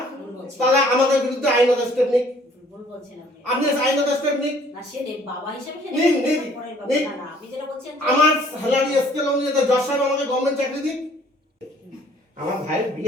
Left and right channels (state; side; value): normal; both; correlation 0.58